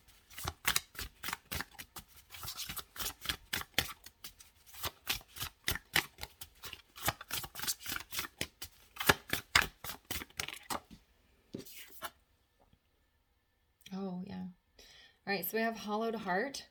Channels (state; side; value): identical; both; correlation 1.00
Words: Oh, yeah. All right, so we have hollowed heart,